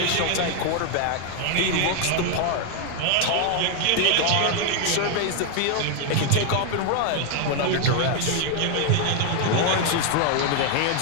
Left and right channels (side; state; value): both; different; correlation 0.01